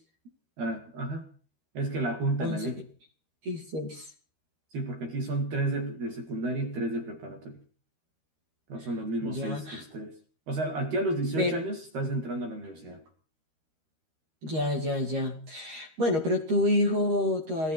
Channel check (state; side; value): late; left; 13 ms